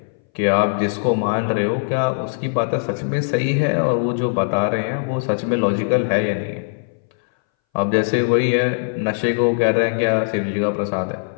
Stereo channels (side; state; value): right; silent; 62 dB below the other